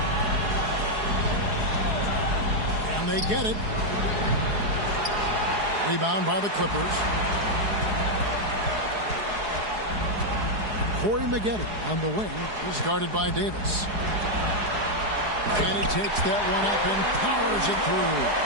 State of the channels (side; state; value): left; late; 4.8 ms